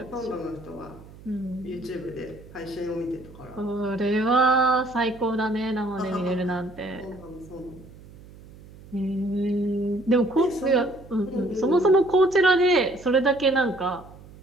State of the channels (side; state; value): right; noise; hum, 20 dB below the sound